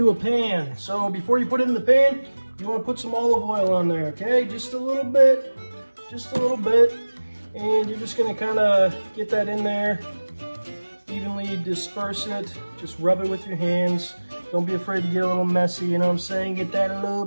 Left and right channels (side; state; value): both; inverted; correlation -1.00